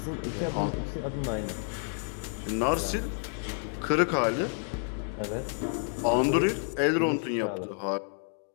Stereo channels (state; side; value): silent; right; 58 dB below the other